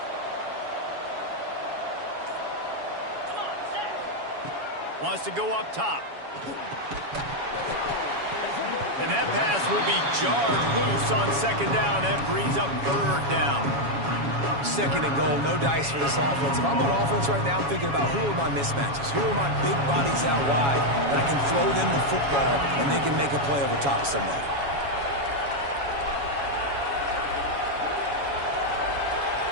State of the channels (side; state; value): left; late; 7.2 ms